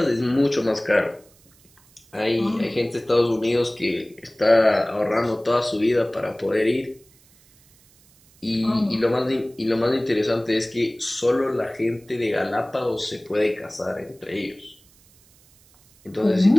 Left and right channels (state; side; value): noise; right; hiss, 30 dB below the sound